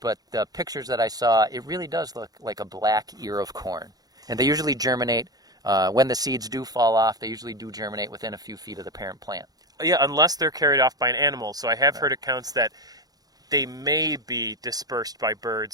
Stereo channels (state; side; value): late; left; 0.18 ms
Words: But the pictures that I saw, it really does look like a black ear of corn. And they usually germinate, when the seeds do fall off, they usually do germinate within a few feet of the parent plant. Yeah, unless they're carried off by an animal. So I have heard accounts that they may be dispersed by